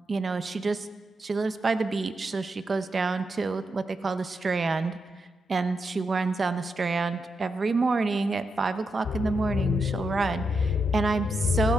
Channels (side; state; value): both; normal; correlation 0.85